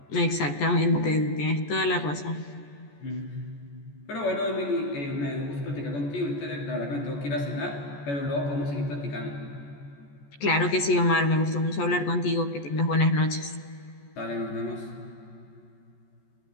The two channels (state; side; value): late; right; 14 ms